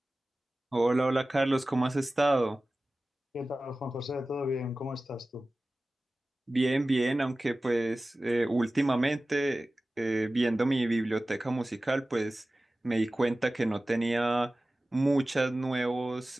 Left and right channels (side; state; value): both; normal; correlation 0.96